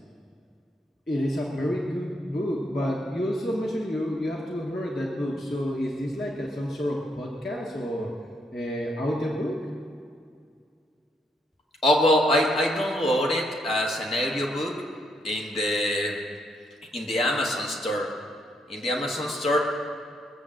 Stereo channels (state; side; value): normal; both; correlation 0.75